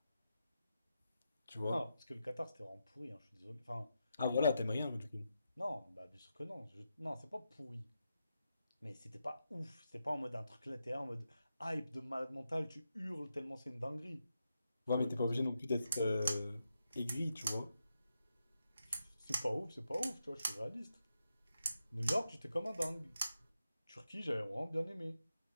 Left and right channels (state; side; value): inverted; both; correlation -0.86